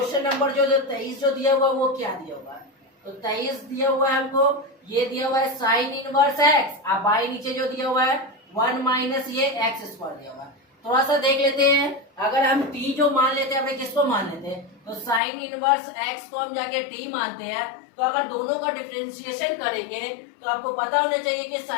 नंबर जो 23 जो दिया हुआ वो क्या दिया हुआ है। तो 23 दिया हुआ है हमको, ये दिया हुआ है साइन इनवर्स एक्स, अब बाई नीचे जो दिया हुआ है 1 माइनस ये एक्स स्क्वायर दिया हुआ है। थोड़ा सा देख लेते हैं। अगर हम टी जो मान लेते हैं, अपने किसको मान लेते हैं, तो साइन इनवर्स एक्स को हम जाके टी मानते हैं। तो अगर दोनों का डिफरेंशिएशन करेंगे तो आपको पता होना चाहिए कि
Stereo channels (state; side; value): drops out; right; at 15.2 s